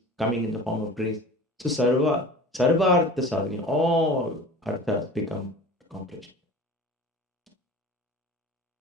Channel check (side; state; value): both; normal; correlation 0.39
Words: coming in the form of grace. So sarva artha sadhani, all arthas become accomplished.